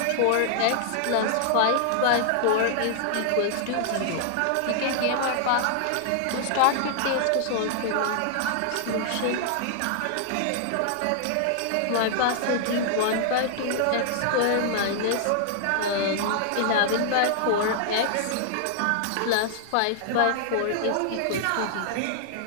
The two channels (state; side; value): different; both; correlation -0.01